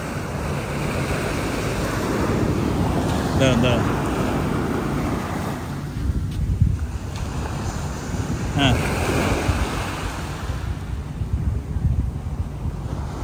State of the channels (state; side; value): identical; both; correlation 1.00